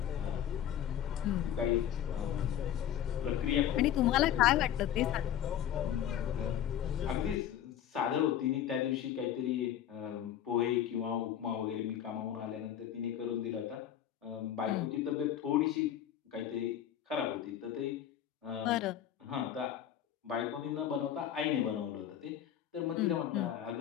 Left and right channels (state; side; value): quieter; right; 10.4 dB